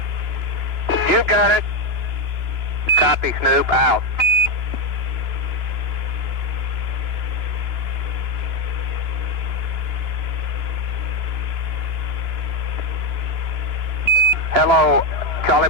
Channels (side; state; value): left; late; 2.9 ms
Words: You got it. Copy, Snoop, out. Hello, Charlie